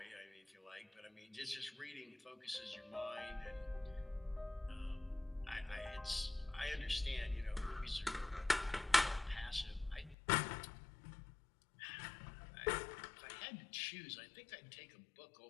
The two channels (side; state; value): right; drops out; at 10.2 s